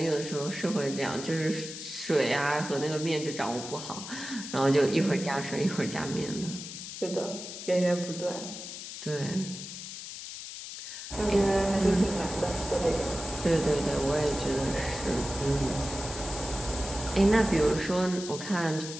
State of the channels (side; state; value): left; noise; hiss, 10 dB below the sound